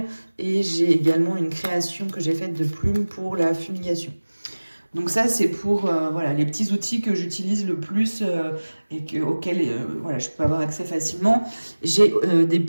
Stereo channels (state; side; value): inverted; both; correlation -1.00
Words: et j'ai également une création que j'ai faite de plumes pour la fumigation. Donc ça, c'est pour voilà, les petits outils que j'utilise le plus et auxquels voilà, je peux avoir accès facilement. J'ai des